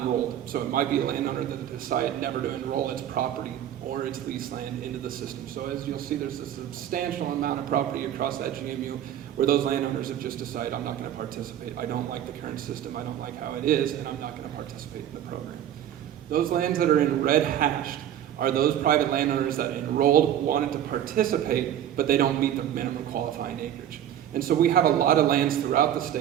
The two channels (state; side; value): quieter; left; 10.8 dB